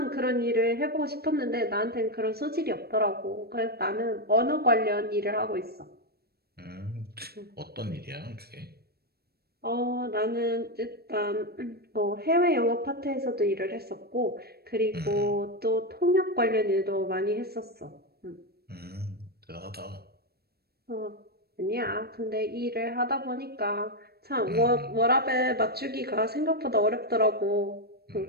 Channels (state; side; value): late; left; 0.46 ms